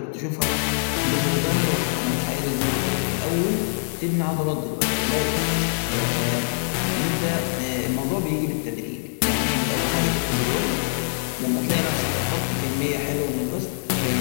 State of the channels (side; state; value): right; silent; digital silence